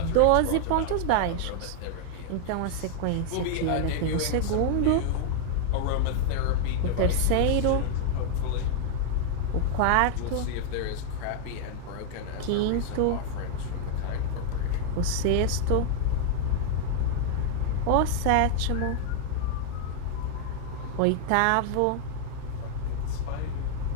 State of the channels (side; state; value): both; different; correlation 0.00